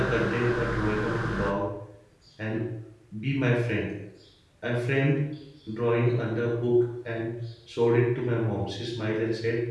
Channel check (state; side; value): identical; both; correlation 1.00